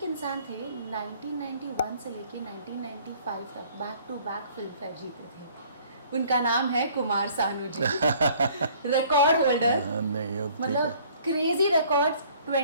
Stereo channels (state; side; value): inverted; both; correlation -0.56